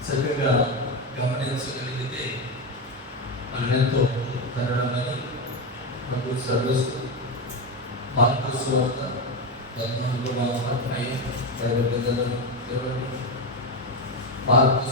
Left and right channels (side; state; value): both; normal; correlation 0.12